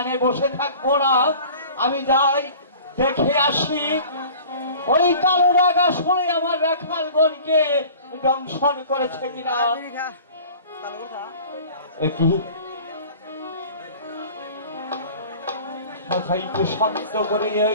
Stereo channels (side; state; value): both; inverted; correlation -0.44